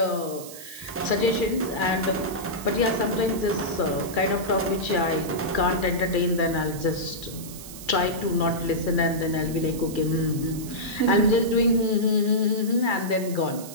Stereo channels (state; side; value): noise; right; hiss, 14 dB below the sound